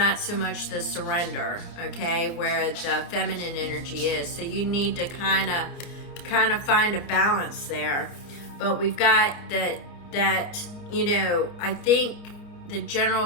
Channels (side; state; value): right; late; 29 ms